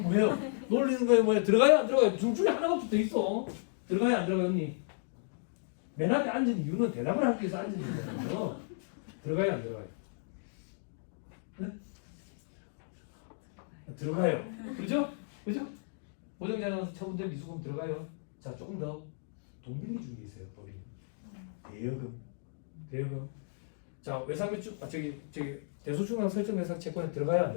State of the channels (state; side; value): silent; right; digital silence